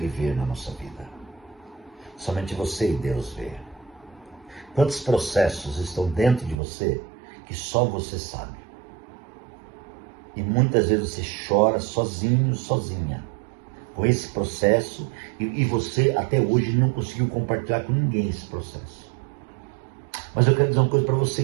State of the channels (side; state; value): left; drops out; at 6.6 s